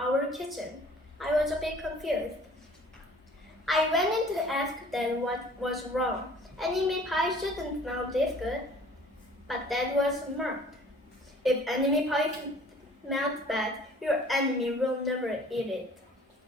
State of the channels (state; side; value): normal; both; correlation 0.51